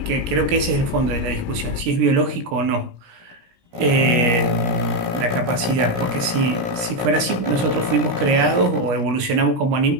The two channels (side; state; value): left; late; 17 ms